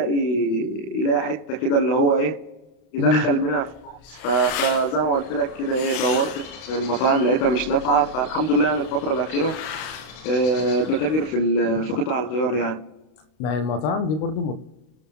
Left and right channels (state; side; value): late; right; 32 ms